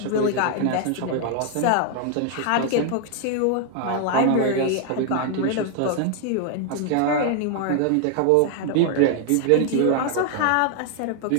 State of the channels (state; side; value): different; both; correlation 0.00